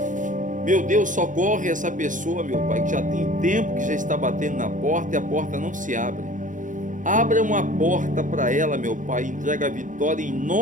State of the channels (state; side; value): late; left; 0.37 ms